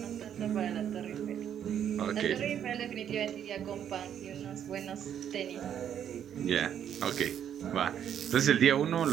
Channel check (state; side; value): quieter; left; 9.4 dB